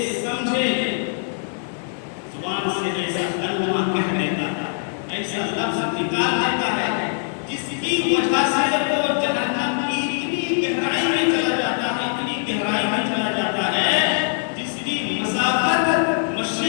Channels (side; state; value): right; silent; digital silence